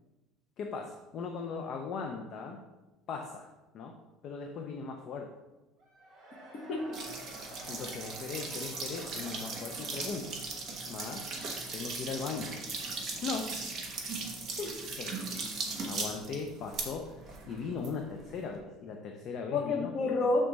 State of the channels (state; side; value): normal; both; correlation 0.54